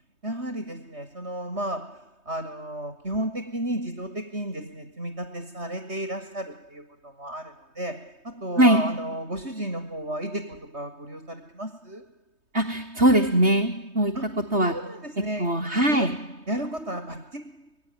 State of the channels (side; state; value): left; late; 3.2 ms